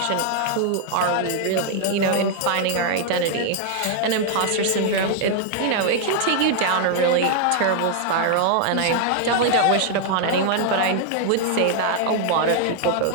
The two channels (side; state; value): both; different; correlation 0.00